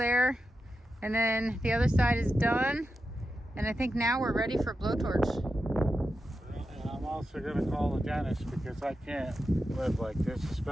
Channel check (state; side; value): normal; both; correlation 0.89